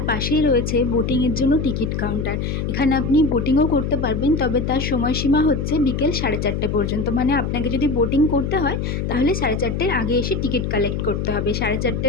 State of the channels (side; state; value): left; noise; hum, 2 dB below the sound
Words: পাশেই রয়েছে বোটিংয়ের জন্য টিকিট কাউন্টার। এখানে আপনি বোটিংও করতে পারবেন, তবে তার সময়সীমা হচ্ছে বিকেল 4:30 পর্যন্ত। মানে আপনাকে যদি বোটিং করতে হয় তাহলে 4:30-এর আগে এসে টিকিট কালেক্ট করতে হবে।